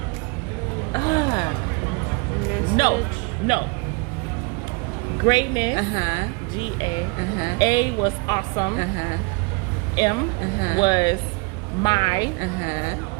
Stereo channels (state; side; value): quieter; left; 30.0 dB